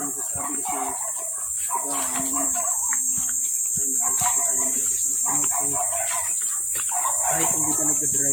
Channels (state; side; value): identical; both; correlation 1.00